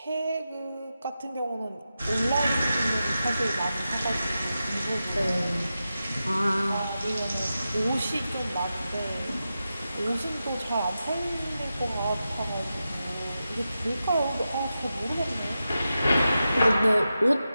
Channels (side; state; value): both; inverted; correlation -0.91